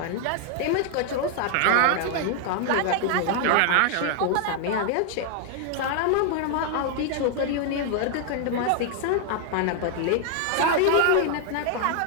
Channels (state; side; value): different; both; correlation 0.00